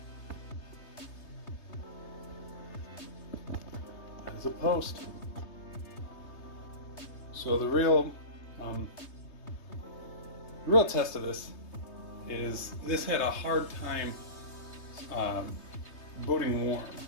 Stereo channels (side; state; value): right; late; 3.3 ms